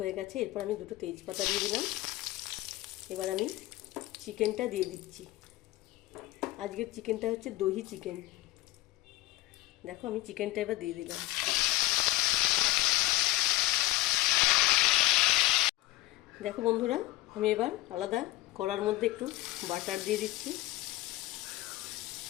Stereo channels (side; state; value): right; quieter; 18.4 dB